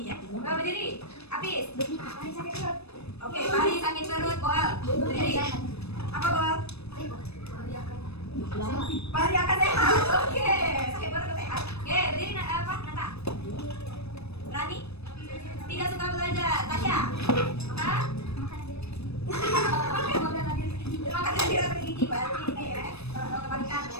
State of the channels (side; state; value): right; late; 0.79 ms